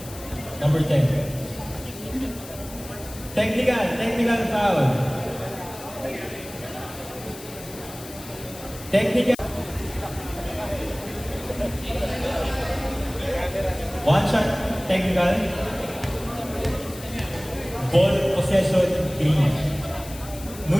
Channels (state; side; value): noise; left; hiss, 15 dB below the sound